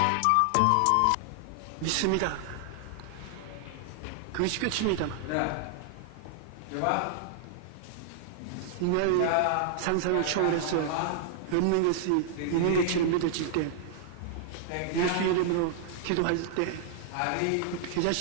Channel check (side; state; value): both; different; correlation 0.00